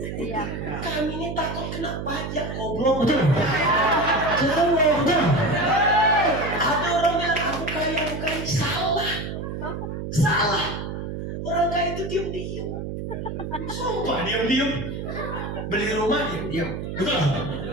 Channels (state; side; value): noise; right; hum, 6 dB below the sound